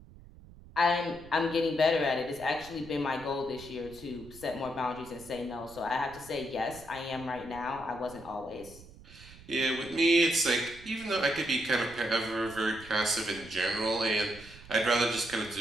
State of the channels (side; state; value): right; noise; rumble, 19 dB below the sound